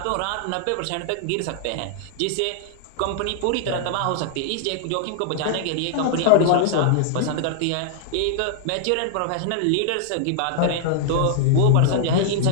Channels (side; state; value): both; different; correlation -0.01